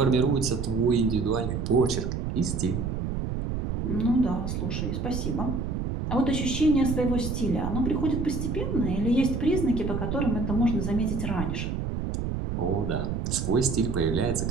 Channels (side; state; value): right; noise; rumble, 2 dB below the sound